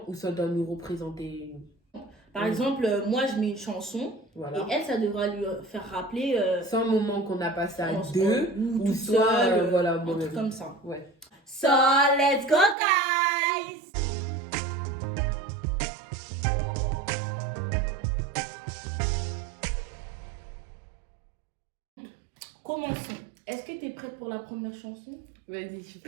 ou ça doit nous représenter. Par exemple, moi, je mets une chanson Voilà. et elle, ça devra lui faire rappeler... soit un moment qu'on a passé à ensemble, deux ou ou toute soit, seule, voilà, un moi-même. truc comme ça. Ouais. So, let's go, guys! Commençons. Est-ce que tu es prête pour la première chanson? Vas-y, je suis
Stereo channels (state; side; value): drops out; left; at 12.8 s